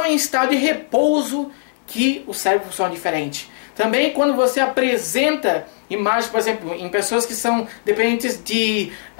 em estado de repouso que o cérebro funciona diferente. Também quando você apresenta imagens, por exemplo, em pessoas que são dependentes de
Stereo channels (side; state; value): right; silent; digital silence